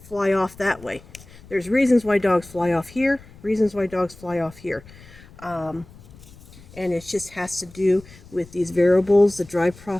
fly off that way. There's reasons why dogs fly off here, reasons why dogs fly off here. And it just has to do with these variables, the drive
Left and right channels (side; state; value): left; noise; rumble, 21 dB below the sound